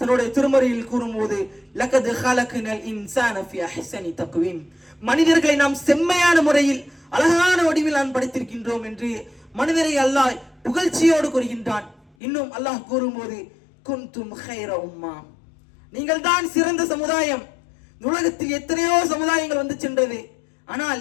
திருமறையில் கூறும்போது லகத் ஹலக்னல் இன்சான ஃபீ அஹ்ஸனி தக்வீம், மனிதர்களை நாம் செம்மையான முறையில் அழகான வடிவில் நான் படைத்திருக்கின்றோம் என்று மனிதரை அல்லாஹ் புகழ்ச்சியோடு கூறுகின்றான். இன்னும் அல்லாஹ் கூறும்போது குன்தும் கைர உம்மா, நீங்கள் தான் சிறந்த சமுதாயம். உலகத்தில் எத்தனையோ சமுதாயங்கள் வந்து சென்றது.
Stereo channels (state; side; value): drops out; right; at 12.1 s